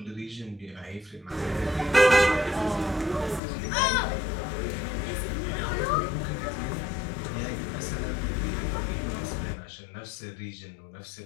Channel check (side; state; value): right; drops out; at 3.4 s